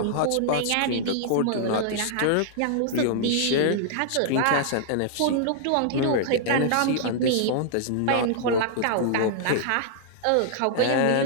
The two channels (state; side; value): different; both; correlation -0.01